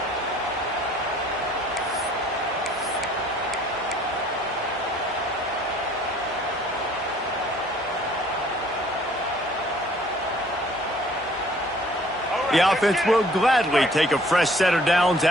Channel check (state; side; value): normal; both; correlation 0.57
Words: The offense will gladly take a fresh set of downs